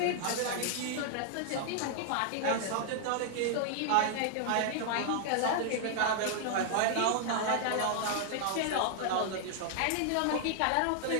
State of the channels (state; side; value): different; both; correlation 0.00